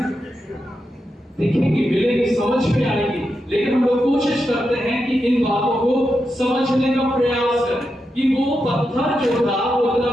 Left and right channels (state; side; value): normal; both; correlation 0.87